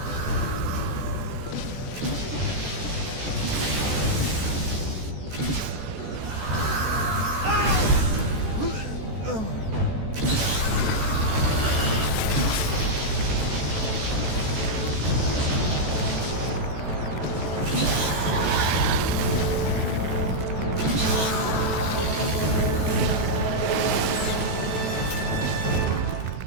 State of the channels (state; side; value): late; left; 14 ms